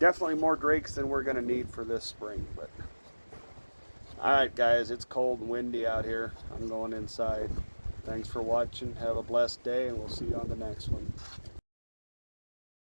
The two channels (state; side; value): inverted; both; correlation -1.00